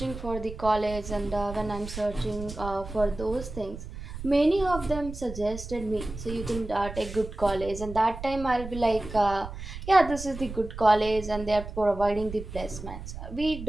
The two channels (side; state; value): right; noise; rumble, 10 dB below the sound